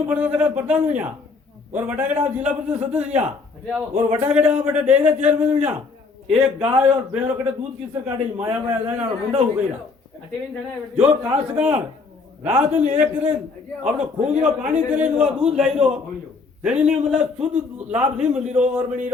पढ़ता था प्रधान हुई और वटागढ़ आप जिला परिषद सदस्य और वटागढ़ आप बेटा डेयरी चेयरमैन हुई। एक गाय और भैंस कटे दूध किससे काटे माया माया जाए और मुंडा हो गई। जो काश्तकार रात दिन एक करे अपने खून रो पानी करे वो दूध लाई रो तेरी ने मतलब शुद्ध लाभ नहीं मिली रो और बनी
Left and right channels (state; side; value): quieter; right; 4.3 dB